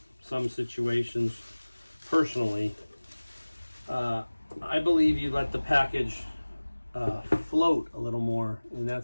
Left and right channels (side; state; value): both; inverted; correlation -1.00